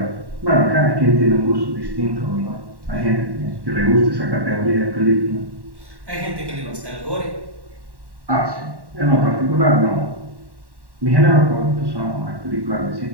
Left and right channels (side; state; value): left; late; 1.1 ms